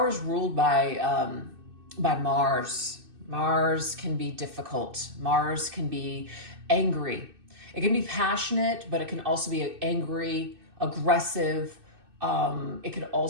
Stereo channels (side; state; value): left; late; 2.6 ms